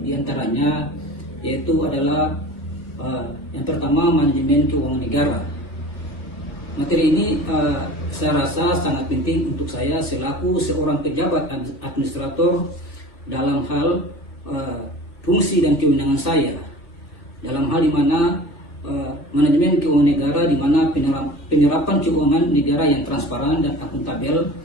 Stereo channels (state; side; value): late; right; 2.8 ms